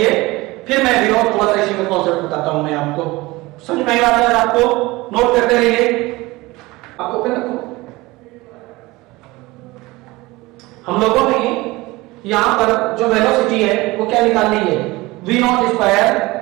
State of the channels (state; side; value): quieter; left; 21.1 dB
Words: फिर मैं भी और थोड़ा सा इसी में कॉन्सेप्ट बताता हूं मैं आपको, समझ में आई बात है आपको, नोट करते रहिए, आप ओपन रखो। हम लोगों ने यहां पर जो वेलोसिटी है वो क्या निकालनी है, v not square,